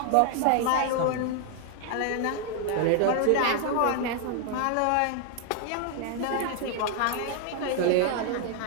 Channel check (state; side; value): different; both; correlation 0.00